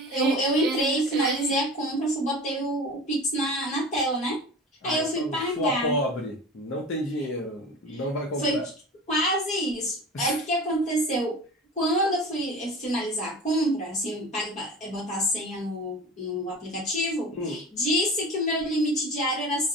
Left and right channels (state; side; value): normal; both; correlation 0.36